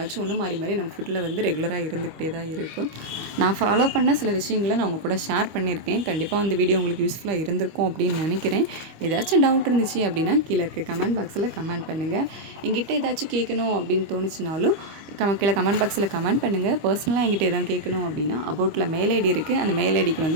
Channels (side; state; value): left; late; 25 ms